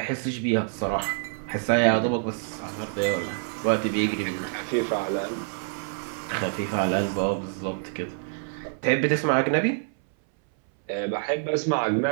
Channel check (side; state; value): left; silent; 59 dB below the other